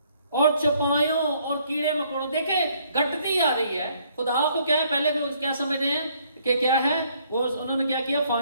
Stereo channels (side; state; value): both; inverted; correlation -0.66